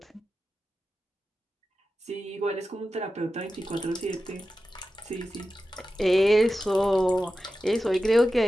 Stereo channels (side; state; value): both; normal; correlation 0.93